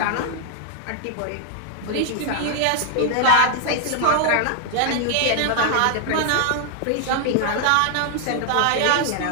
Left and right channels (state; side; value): different; both; correlation -0.01